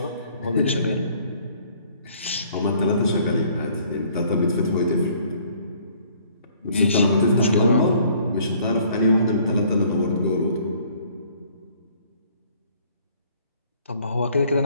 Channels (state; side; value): inverted; both; correlation -0.59